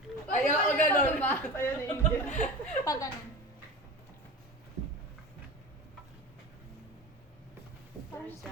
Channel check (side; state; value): both; normal; correlation 0.31